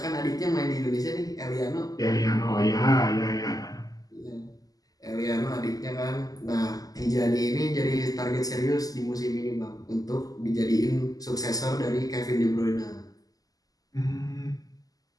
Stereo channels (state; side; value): late; right; 0.17 ms